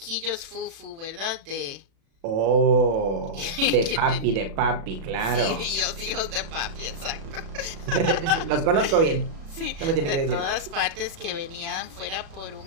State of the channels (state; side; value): late; left; 36 ms